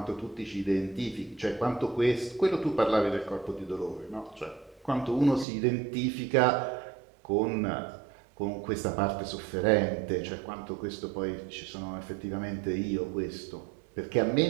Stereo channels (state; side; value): drops out; left; at 5.5 s